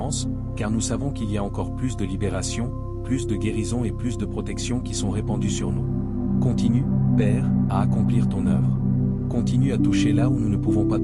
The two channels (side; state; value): both; identical; correlation 1.00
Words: car nous savons qu'il y a encore plus de libération, plus de guérison et plus de protection qui sont répandues sur nous. Continue, Père, à accomplir ton œuvre. Continue à toucher là où nous ne pouvons pas